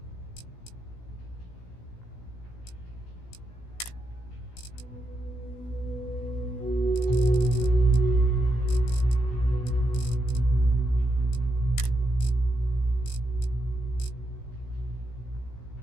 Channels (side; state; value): right; late; 17 ms